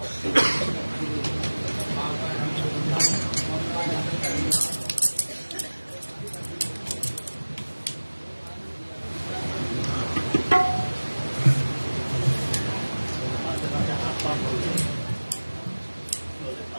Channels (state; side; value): inverted; both; correlation -1.00